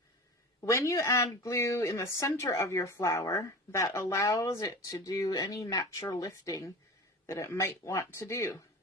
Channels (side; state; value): both; normal; correlation 0.33